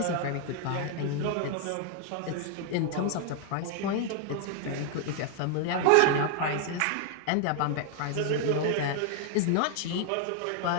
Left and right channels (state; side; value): different; both; correlation 0.00